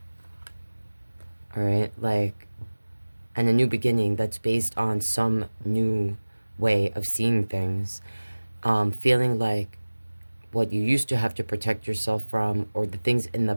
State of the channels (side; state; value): both; inverted; correlation -1.00